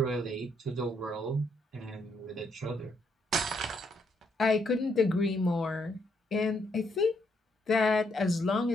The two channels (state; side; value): normal; both; correlation 0.75